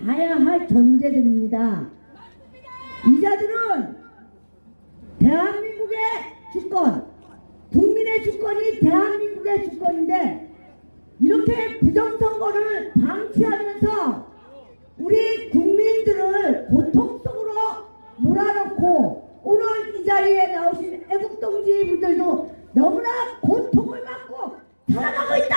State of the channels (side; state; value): both; inverted; correlation -1.00